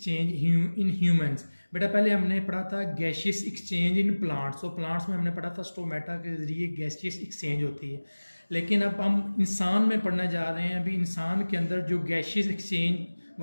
इन ह्यूमंस। बेटा पहले हमने पढ़ा था गैशियस एक्सचेंज इन प्लांट्स। तो प्लांट्स में हमने पढ़ा था स्टोमेटा के जरिए गैशियस एक्सचेंज होती है। लेकिन अब हम इंसान में पढ़ने जा रहे हैं। अभी इंसान के अंदर जो गैशियस एक्सचेंज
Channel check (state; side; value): inverted; both; correlation -1.00